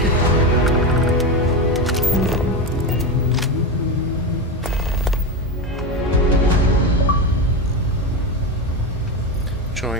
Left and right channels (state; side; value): normal; both; correlation 0.16